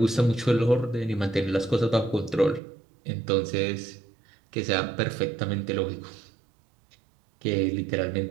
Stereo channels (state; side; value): drops out; left; at 2.6 s